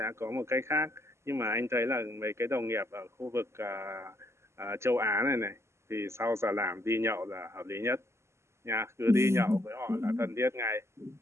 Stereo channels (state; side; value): late; left; 0.13 ms